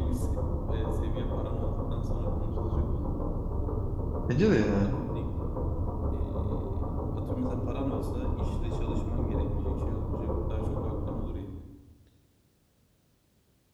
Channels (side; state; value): both; identical; correlation 1.00